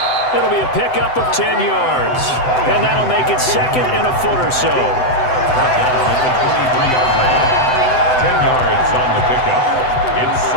It'll be a pickup of 10 yards, and that'll make it 2nd and a foot or so. Down at the 23-yard line. 10 yards on the pickup. It's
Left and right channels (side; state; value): right; late; 7.9 ms